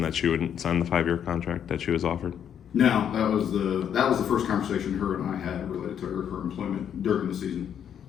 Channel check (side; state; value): right; quieter; 8.9 dB